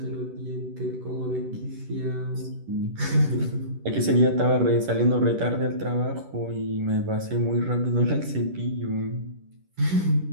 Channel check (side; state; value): left; late; 11 ms